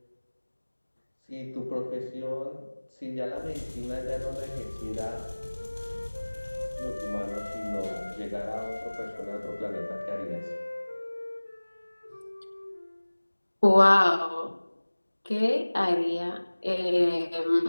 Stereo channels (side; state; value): both; inverted; correlation -1.00